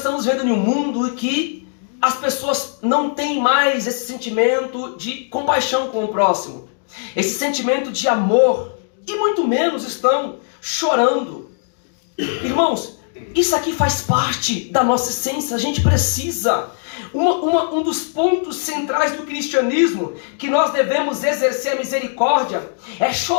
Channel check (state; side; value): silent; right; digital silence